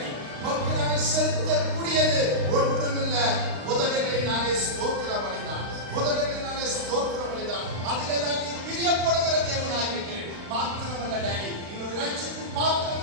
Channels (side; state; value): left; late; 35 ms